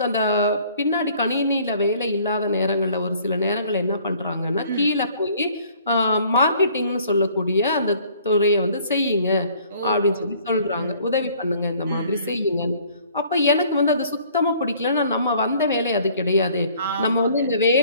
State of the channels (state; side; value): inverted; both; correlation -0.57